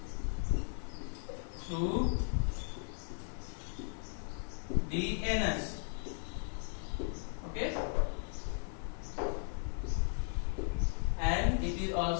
through the anus. Okay, and it is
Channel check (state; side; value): silent; right; 53 dB below the other